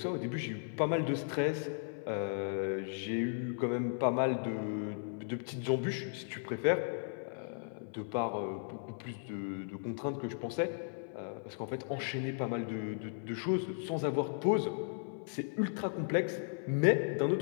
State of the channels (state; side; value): silent; right; 54 dB below the other